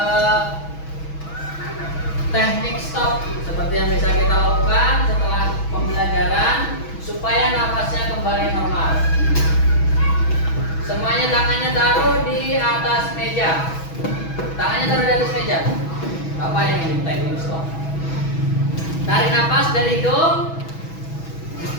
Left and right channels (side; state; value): right; late; 6.2 ms